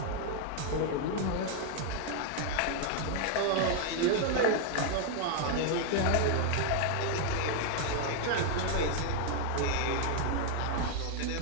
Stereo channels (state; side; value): different; both; correlation 0.01